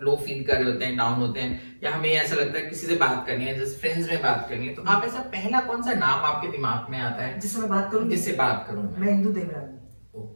लो फील कर रहे होते हैं, डाउन होते हैं, या हमें ऐसा लगता है किसी से बात करनी है, जैसे फ्रेंड्स में बात करनी है, तो आप ऐसा पहला कौन सा नाम आपके दिमाग में आता है जिससे मैं बात करूं? जिससे बात करूं मैं इंदु देवरानी।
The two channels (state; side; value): inverted; both; correlation -1.00